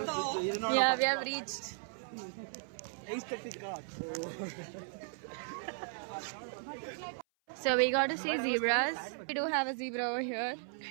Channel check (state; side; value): silent; left; 54 dB below the other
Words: Yeah, we have reached Aesthetic art. So we got to see zebras. We do have a zebra over here.